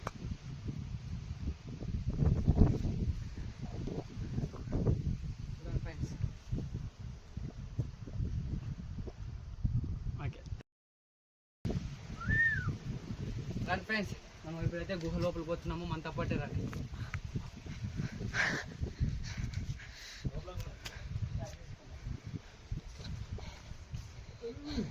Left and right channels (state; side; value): identical; both; correlation 1.00